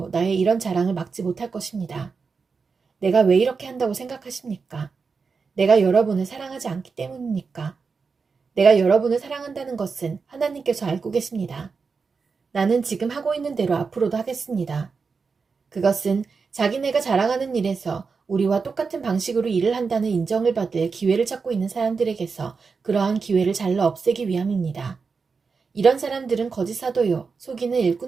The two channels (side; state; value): left; quieter; 5.0 dB